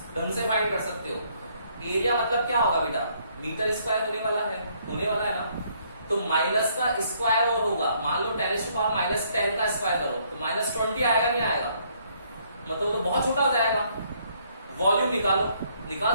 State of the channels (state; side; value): inverted; both; correlation -0.67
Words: ढंग से फाइंड कर सकते हो? एरिया मतलब क्या होगा बेटा? मीटर स्क्वायर होने वाला है ना। तो माइनस का स्क्वायर और होगा, मान लो 10⁻10 का स्क्वायर करो तो -20 आएगा, नहीं आएगा? मतलब तो बहुत छोटा हो जाएगा। वॉल्यूम निकाल